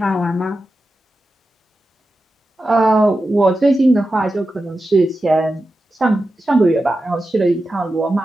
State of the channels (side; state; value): both; normal; correlation 0.91